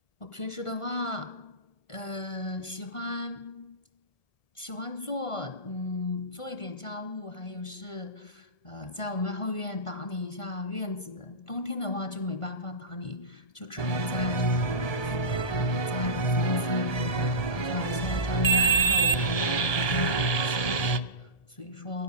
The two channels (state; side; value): late; right; 1.7 ms